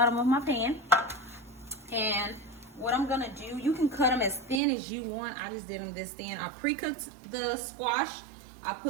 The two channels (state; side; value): drops out; left; at 4.6 s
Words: of my pan. And what I'm gonna do, you can cut them as thin as you want. I just did them this thin. I pre-cooked the squash. I